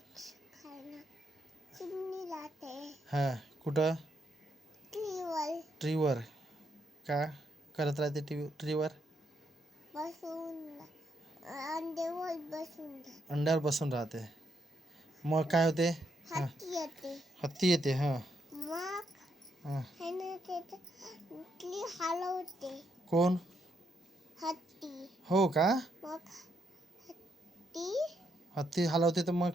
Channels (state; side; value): normal; both; correlation 0.77